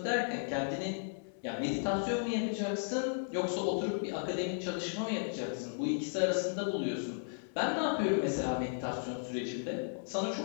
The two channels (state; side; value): silent; right; 55 dB below the other